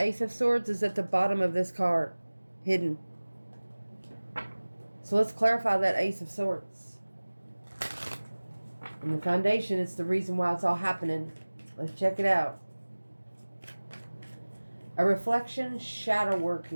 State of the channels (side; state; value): both; inverted; correlation -1.00